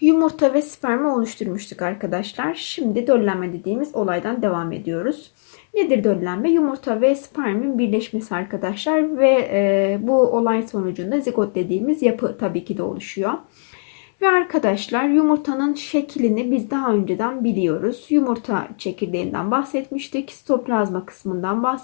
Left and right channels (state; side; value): silent; right; digital silence